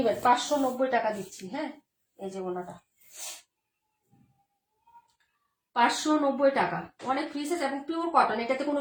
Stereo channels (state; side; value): identical; both; correlation 1.00